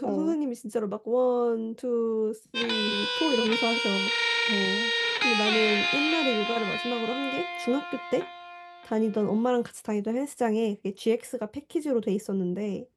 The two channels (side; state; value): both; identical; correlation 1.00